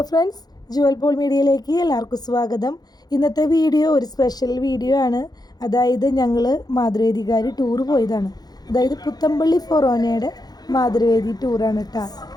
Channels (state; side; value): late; right; 0.19 ms